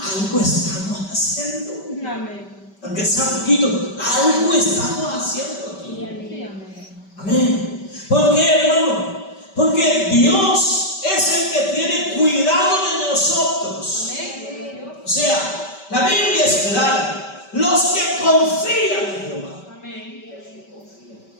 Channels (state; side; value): late; right; 5.2 ms